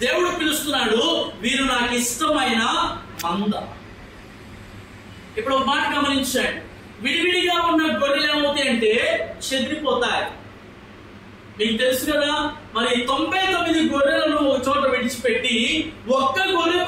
దేవుడు పిలుస్తున్నాడు, వీరు నాకు ఇష్టమైన మంద. ఇప్పుడు ఒక మాట గమనించండి, విడివిడిగా ఉన్న గొర్రెలు ఏమవుతాయి అంటే చెదిరిపోతాయి. మీకు తెలుసు కదా, మరి 99 గొర్రెలను ఒక చోట విడిచిపెట్టి ఒక్క గొర్రె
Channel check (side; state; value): both; identical; correlation 1.00